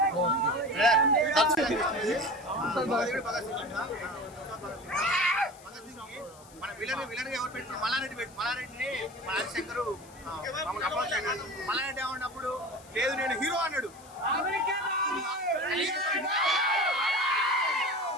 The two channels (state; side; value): noise; left; hiss, 23 dB below the sound